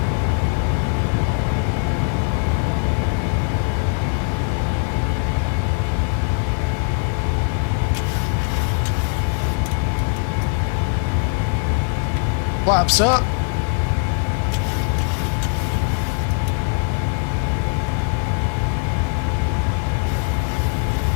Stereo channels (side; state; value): right; quieter; 39.6 dB